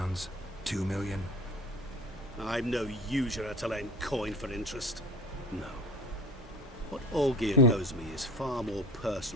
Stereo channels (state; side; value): normal; both; correlation 0.40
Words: 2 million? I'm no usurer to lend coin for interest. No. What Olgierd owes me is far more